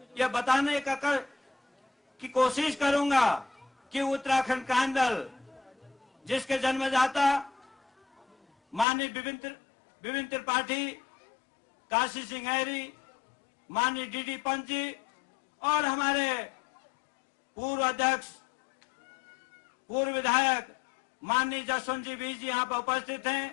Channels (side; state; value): right; drops out; at 8.8 s